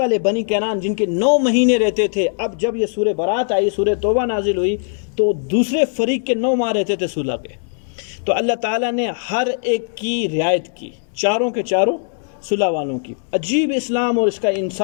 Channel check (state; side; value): silent; right; digital silence